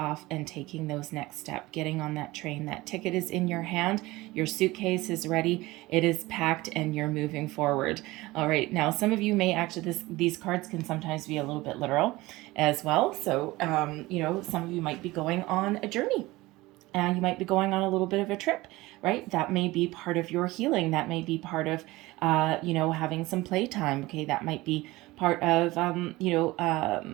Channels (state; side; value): quieter; left; 19.9 dB